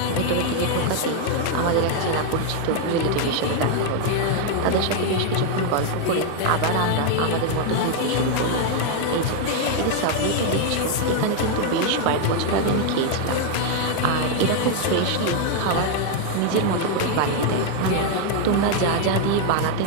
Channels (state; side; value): different; both; correlation 0.00